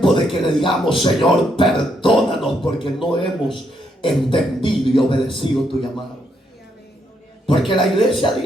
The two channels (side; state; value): both; normal; correlation 0.76